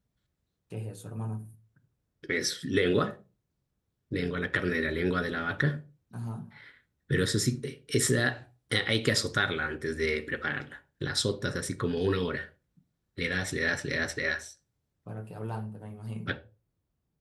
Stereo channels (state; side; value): identical; both; correlation 1.00